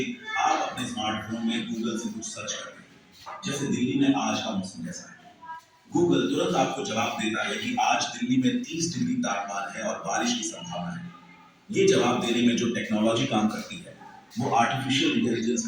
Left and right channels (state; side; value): identical; both; correlation 1.00